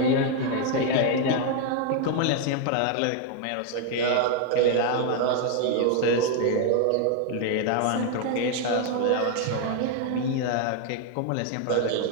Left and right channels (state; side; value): different; both; correlation 0.00